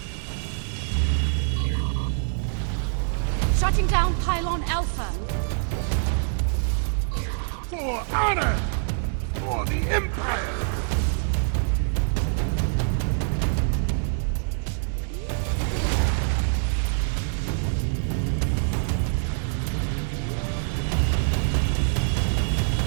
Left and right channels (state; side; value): silent; left; digital silence